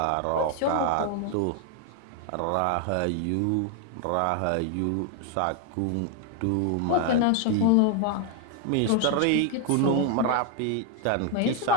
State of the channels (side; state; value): both; different; correlation 0.00